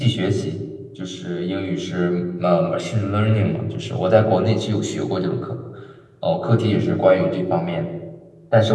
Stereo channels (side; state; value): both; identical; correlation 1.00